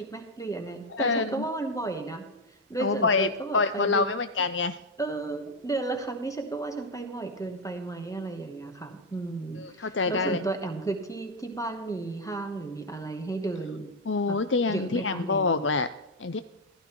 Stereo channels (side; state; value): both; normal; correlation 0.05